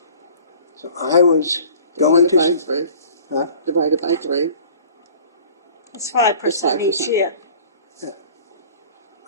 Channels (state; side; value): inverted; both; correlation -0.47